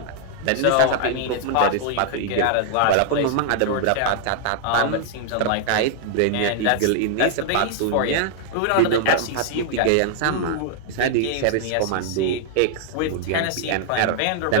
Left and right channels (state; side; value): different; both; correlation -0.01